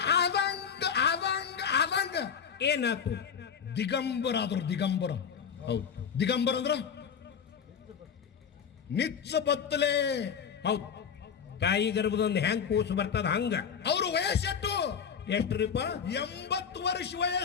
ಆದಂಗ ಏನಾಯ್ತು? ದಿಗಂಬರ ಆದ್ರು. ದಿಗಂಬರ. ಹೌದು, ದಿಗಂಬರ ಅಂದ್ರ ನಿಚ್ಚ ಬತ್ತಲೆ. ಹೌದು, ತಾಯಿ ಗರ್ಭದೊಂದು ಹೆಂಗ್ ಕೂಸು ಬರ್ತದ ಹಂಗ. ಅವ್ರ ವಯಸ್ಸೆಟ್ಟು? ಎಷ್ಟ್ರಿಪ್ಪ? 80 ವರ್ಷ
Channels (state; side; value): quieter; right; 7.2 dB